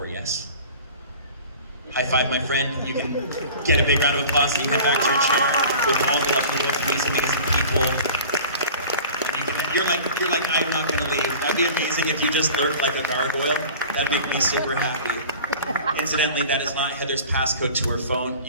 yes? High five, my friend. You can get a big round of applause and you come back to your chair with all the lovely, amazing people. You're like, I'm not gonna leave. That'd be amazing if you just lurked like a gargoyle. That'd make me super happy. Incidentally, that is not Heather's passcode to her phone,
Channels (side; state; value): both; inverted; correlation -0.41